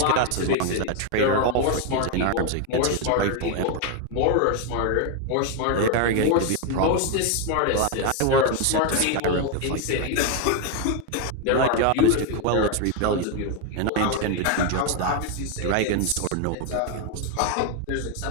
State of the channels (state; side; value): different; both; correlation 0.01